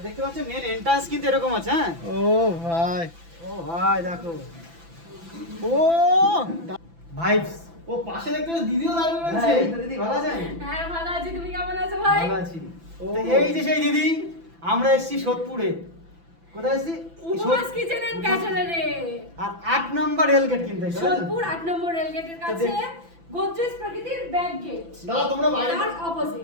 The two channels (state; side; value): late; left; 6.0 ms